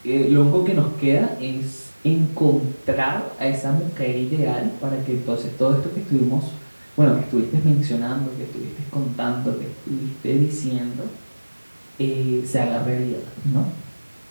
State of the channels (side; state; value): both; inverted; correlation -1.00